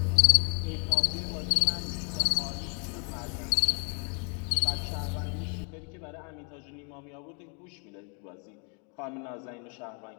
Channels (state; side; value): quieter; right; 37.7 dB